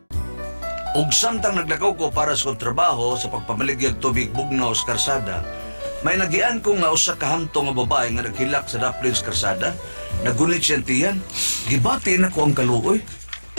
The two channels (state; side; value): inverted; both; correlation -1.00